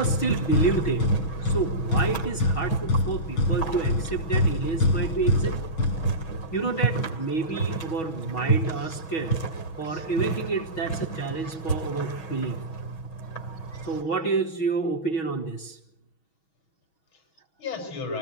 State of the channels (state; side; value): late; right; 6.2 ms